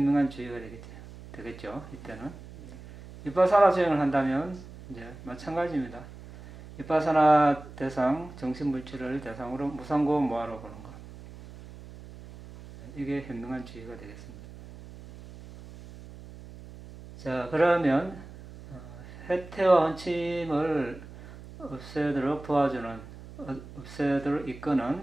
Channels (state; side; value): noise; right; hum, 16 dB below the sound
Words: 주의가 되겠죠. 이때는 비파사나 수행을 한다면 이제 마찬가지입니다. 비파사나 대상, 정신물질을 대상으로 무상고 모아로 보는 것, 이게 현명한 주의가 되겠습니다. 자, 그러면 해태와 원침을 없애도록 도와주는, 없애도록